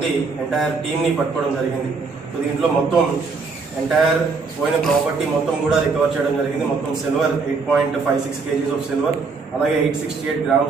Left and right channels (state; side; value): quieter; left; 4.5 dB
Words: ఎంటైర్ టీమ్ని పట్టుకోవడం జరిగింది. సో దీంట్లో మొత్తం ఎంటైర్ పోయిన ప్రాపర్టీ మొత్తం కూడా రికవర్ చేయడం జరిగింది. మొత్తం సిల్వర్ 8.56 kgs ఆఫ్ సిల్వర్, అలాగే 868